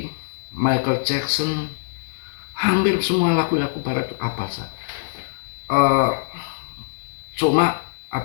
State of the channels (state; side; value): silent; right; digital silence